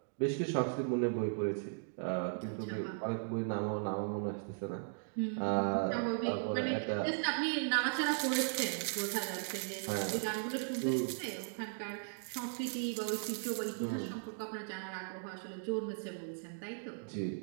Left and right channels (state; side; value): silent; left; digital silence